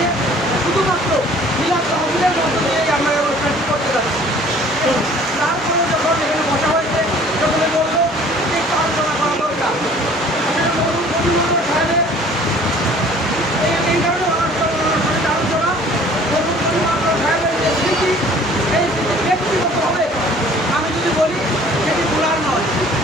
শুধুমাত্র মিলাদ তহবিলের মধ্য দিয়েই আমরা এই অনুষ্ঠানটি করতে যাচ্ছি। তারপরে যখন এখানে বসা হয়েছে, সকলে বলল যে একটু আলোচনা করা দরকার। সাহেবের এই কারণে আলোচনা সাহেবের যে স্মৃতি, এই স্মৃতি ব্যক্তিগতভাবে আমি যদি বলি সেটি ভুলার নয়।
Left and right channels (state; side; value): normal; both; correlation 0.52